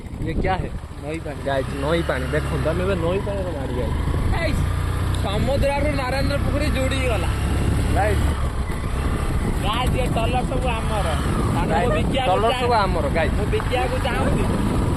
ये क्या है? नई पानी गाइस, नई पानी देखो तमें नई पानी गाड़ी गाइस समुद्र नारायण पुखरी जोड़ी गला गाइस गाइस ये टलर सब आमर टलर सब आमर गाइस बिकिया को चाहूँ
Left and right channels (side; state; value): both; identical; correlation 1.00